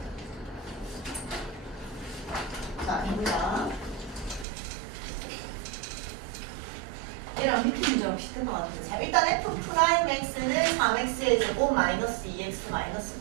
자, 해보자. 얘랑 밑에 문제랑 비슷한 것 같은데. 자, 일단 F'X는 3X의 제곱 마이너스 2X 마이너스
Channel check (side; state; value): left; drops out; at 4.5 s